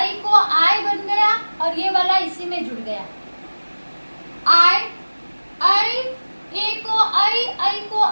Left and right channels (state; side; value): inverted; both; correlation -1.00